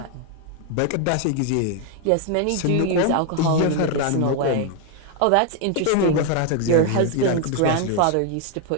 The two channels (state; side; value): different; both; correlation 0.01